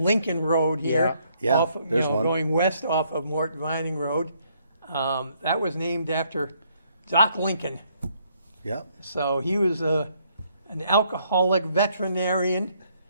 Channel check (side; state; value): both; inverted; correlation -0.70